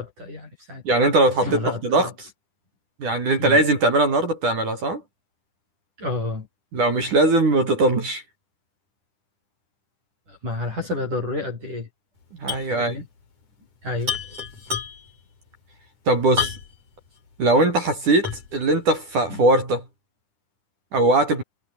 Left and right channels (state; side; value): late; left; 10 ms